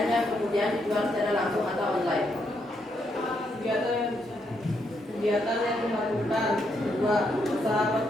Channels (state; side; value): normal; both; correlation 0.77